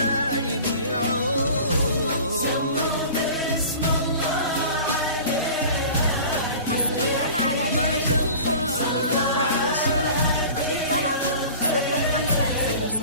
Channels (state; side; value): inverted; both; correlation -0.40